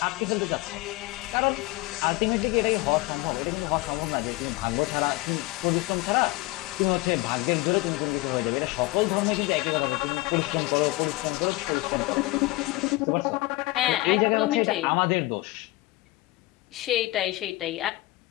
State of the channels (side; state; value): right; quieter; 20.5 dB